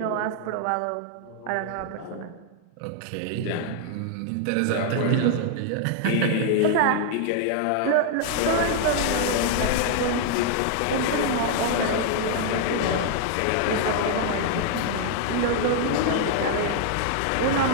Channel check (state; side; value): different; both; correlation -0.01